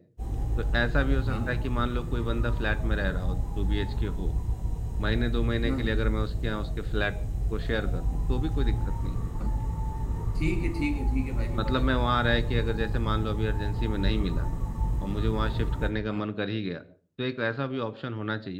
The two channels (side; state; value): both; identical; correlation 1.00